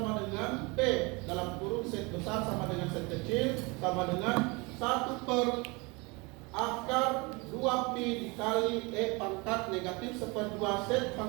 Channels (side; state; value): left; quieter; 27.1 dB